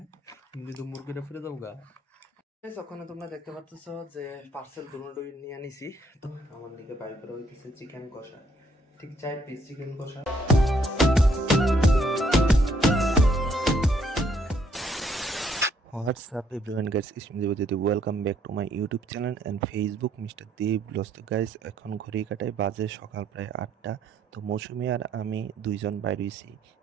যদি মুরগিটা ফিরে যাবো গা। ওখানে তোমরা দেখতে পাচ্ছ যে পার্সেল দুটোই নিয়ে আনিছি। তো আমার দিকে বাই করে হইতেছে চিকেন কষা, ঠিক 4 পিস চিকেন কষা। What's up everyone guys, it's me Devajyoti. Welcome back to my YouTube channel and Facebook Mr. Dev Vlogs. তো গাইস এখন ঘড়ি কাটায় বাজে সকাল প্রায় 8টা। তো মৌসুমি আর আমি দুইজন বাইরে হইছি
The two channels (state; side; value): normal; both; correlation 0.68